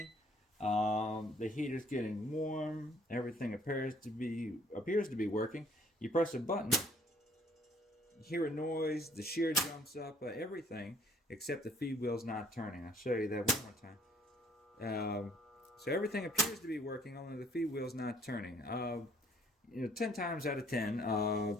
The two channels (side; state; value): both; normal; correlation 0.60